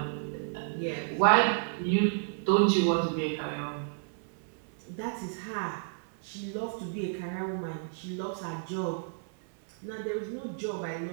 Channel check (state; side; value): silent; left; digital silence